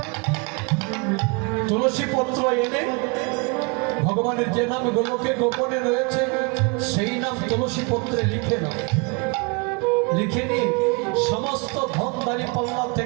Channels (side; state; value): left; quieter; 31.2 dB